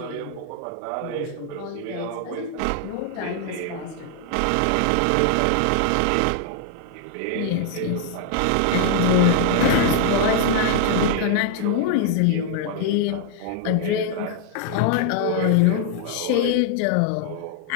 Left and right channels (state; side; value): different; both; correlation 0.00